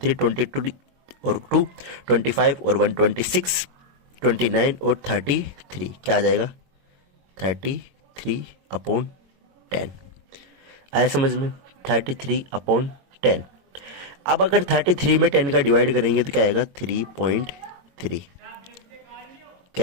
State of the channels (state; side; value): late; left; 22 ms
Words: 22 और 2 25 और 1 26, 29 और 33, क्या आ जाएगा 33/10। आया समझ में, 33/10। अब अगर 33 में 10 का डिवाइड करेंगे तो क्या आएगा 3.3,